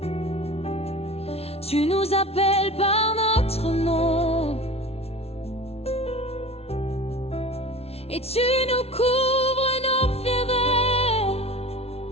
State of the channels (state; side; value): late; right; 0.30 ms